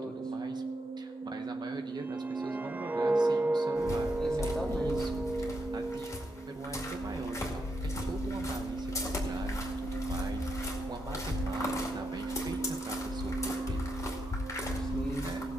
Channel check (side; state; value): both; normal; correlation 0.83